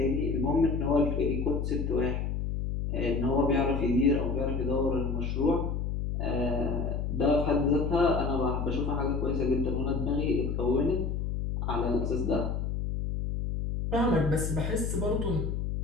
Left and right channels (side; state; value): left; noise; hum, 1 dB below the sound